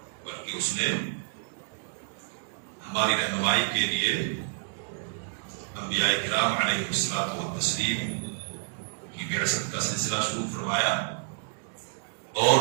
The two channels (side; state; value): left; silent; digital silence